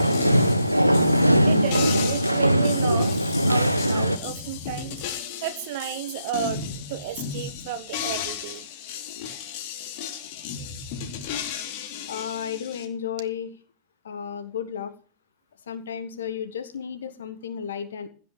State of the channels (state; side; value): inverted; both; correlation -0.77